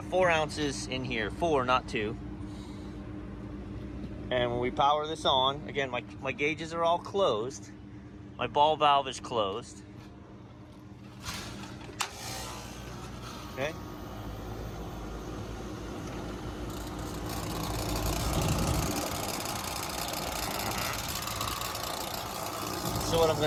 4 ounces in here. 4, not 2. And when we power this on, again, my gauges are all closed. My ball valve is closed. Okay. So what I'm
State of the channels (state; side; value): identical; both; correlation 1.00